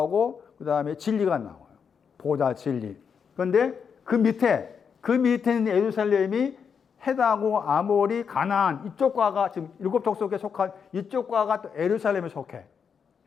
그 다음에 진리가 나와요. 보좌, 진리. 그런데 그 밑에 있는 예루살렘이 헷하고 아몰이 가나안 이쪽 과가 지금 7 족속에 속한 이쪽 과가 또 예루살렘에 속해.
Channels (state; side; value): quieter; right; 6.6 dB